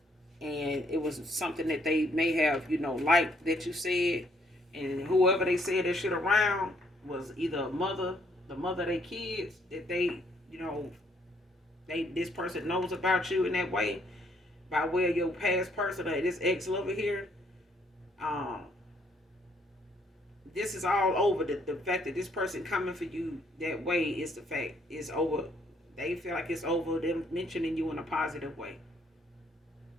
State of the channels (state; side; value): normal; both; correlation 0.68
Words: and it was something that they may have, you know, liked that you said, and whoever they said that shit around was either a mother, the mother of their kids, that they, you know, this person knows about you in that way by way of your past person or this ex lover here. This is all over. The fact that this person coming for you that way is the fact. It's over. They feel like it's over them mentioning you in a positive way.